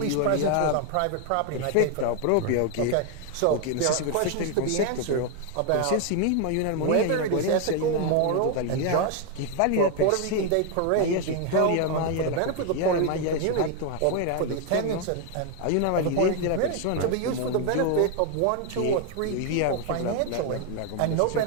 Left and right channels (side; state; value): both; different; correlation 0.00